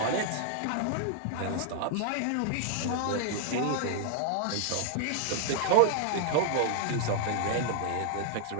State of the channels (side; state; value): both; different; correlation 0.00